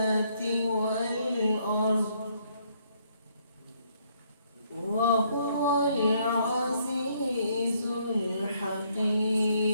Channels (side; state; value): both; inverted; correlation -0.69